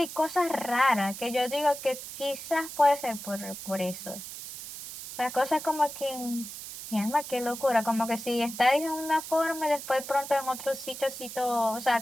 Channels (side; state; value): right; noise; hiss, 10 dB below the sound